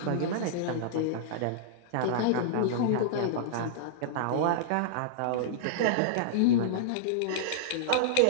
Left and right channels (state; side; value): different; both; correlation -0.02